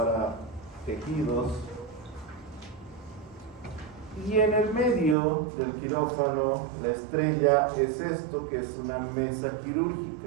tejidos. Y en el medio del quirófano, la estrella es esto, que es una mesa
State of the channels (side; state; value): left; drops out; at 5.2 s